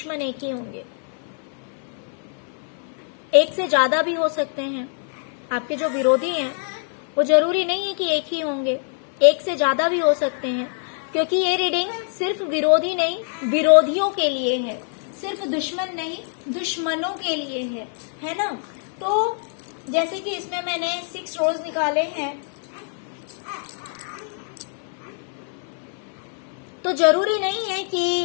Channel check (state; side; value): silent; right; 57 dB below the other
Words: एक ही होंगे, एक से ज्यादा भी हो सकते हैं। आपके जो विरोधी हैं वो जरूरी नहीं है कि एक ही होंगे, एक से ज्यादा भी हो सकते हैं, क्योंकि ये रीडिंग सिर्फ विरोधी नहीं, विरोधियों के लिए है, सिर्फ दुश्मन नहीं, दुश्मनों के लिए है ना। तो जैसे कि इसमें मैंने 6 रोज निकाले हैं, तो जरूरी नहीं है कि